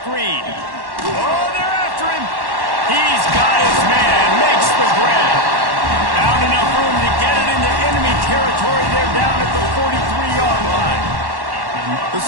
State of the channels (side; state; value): left; late; 1.1 ms